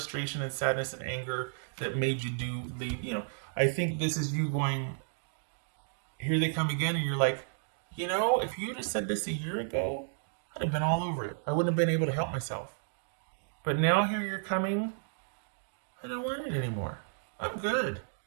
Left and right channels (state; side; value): silent; left; digital silence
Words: and sadness and anger that made you leave. I think this is you going, here they come again, and you're like, if you just said this a year ago, I'd have been all over it. I wouldn't have been able to help myself. But now here you're coming, I don't want it anymore. I'm good.